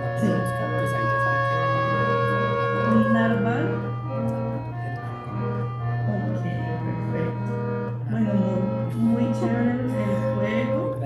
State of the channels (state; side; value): identical; both; correlation 1.00